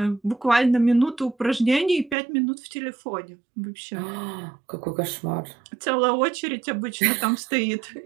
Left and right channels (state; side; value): drops out; left; at 2.1 s